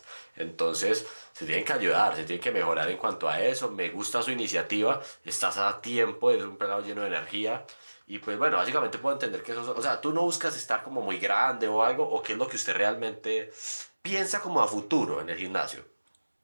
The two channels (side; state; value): both; inverted; correlation -1.00